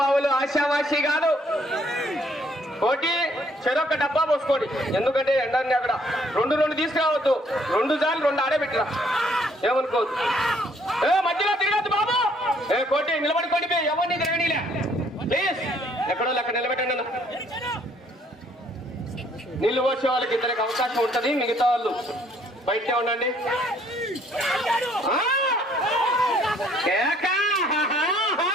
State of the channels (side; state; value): both; normal; correlation 0.64